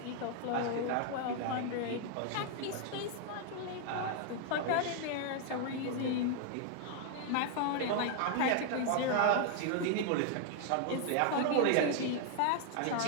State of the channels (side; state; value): both; different; correlation 0.00